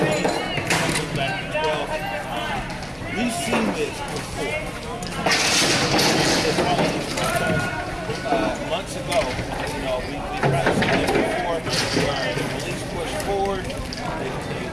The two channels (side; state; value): both; identical; correlation 1.00